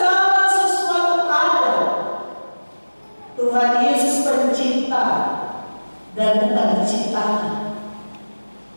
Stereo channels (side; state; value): both; inverted; correlation -1.00